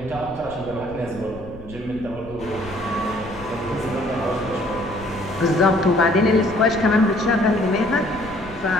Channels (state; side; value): noise; left; rumble, 18 dB below the sound